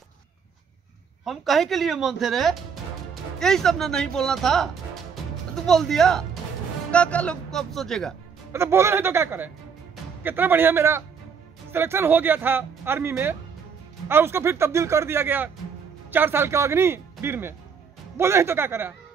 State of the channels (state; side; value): quieter; left; 6.3 dB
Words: हम कहे के लिए मन थे रे, यही सब ना नहीं बोलना था, तू बोल दिया। का लोग कब सोचेगा? मतलब बोले नहीं तो क्या करें। कितना बढ़िया मेरा सिलेक्शन हो गया था आर्मी में, और उसको फिर तब्दील कर दिया गया 4 साल के अग्निवीर में। बोले नहीं तो क्या करें।